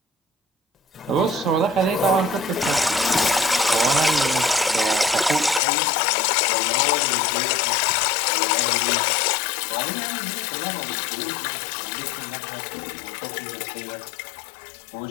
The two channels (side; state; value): right; drops out; at 5.6 s